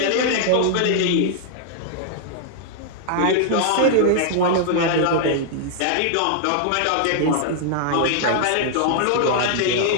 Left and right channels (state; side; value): different; both; correlation -0.01